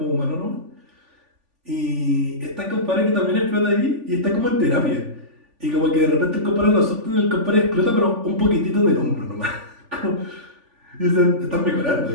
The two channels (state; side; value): late; left; 3.5 ms